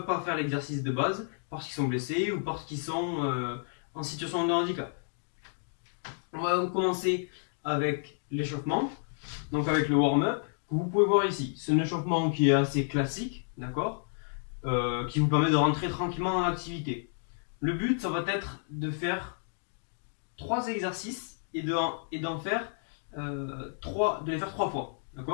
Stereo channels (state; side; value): silent; right; digital silence